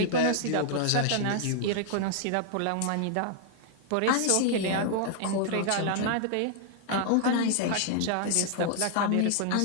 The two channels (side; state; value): both; different; correlation 0.00